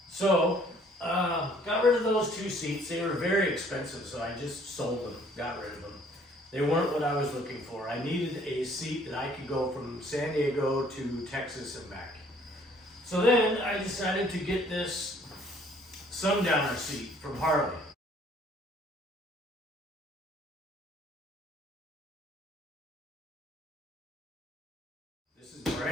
So, got rid of those two seats. They were very expensive, so I just sold them, got rid of them. They weren't what I was looking for. I needed a seat that I could go from San Diego to Texas and back. So then I decided to get this Sundowner seat from Harley. This is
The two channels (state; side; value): normal; both; correlation 0.59